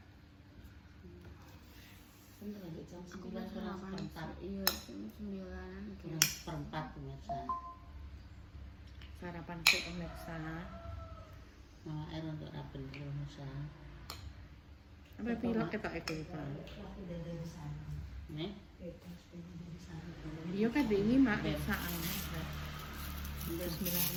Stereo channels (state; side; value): identical; both; correlation 1.00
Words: Jam Aku 9 pas sarapan. Iya, jam 9-an gitu. perempat pemirsa. Sarapan sih pemirsa. Malah air untuk rapen pemirsa. Apa pilek ketok itu, Pak? Nih, Iya kan ini mak saan.